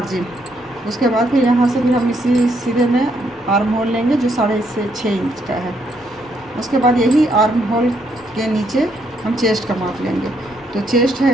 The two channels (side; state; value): both; normal; correlation 0.73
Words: उसके बाद फिर यहाँ से भी हम इसी सीधे में आर्म होल लेंगे, जो 6.5 इंच का है। उसके बाद यही आर्म होल के नीचे हम चेस्ट का माप लेंगे। तो चेस्ट